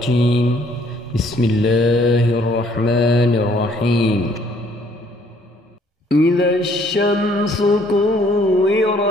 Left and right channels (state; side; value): normal; both; correlation 0.63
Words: بسم الله الرحمن الرحيم. إذا الشمس